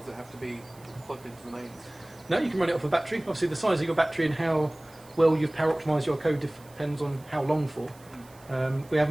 it have to be plugged into the mains? No, you can run it off a battery. Obviously, the size of your battery and how well you've power optimised your code depends on how long for. We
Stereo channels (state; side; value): noise; right; hiss, 26 dB below the sound